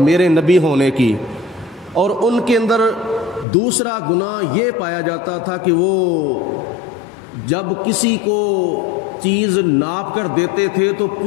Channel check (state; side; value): drops out; right; at 3.5 s